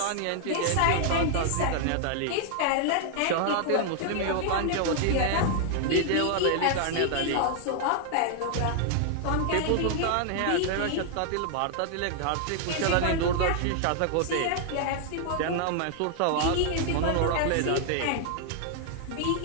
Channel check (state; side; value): different; both; correlation 0.00